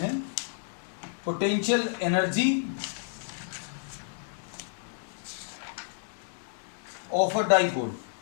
potential energy of a dipole.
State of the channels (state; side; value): silent; right; 58 dB below the other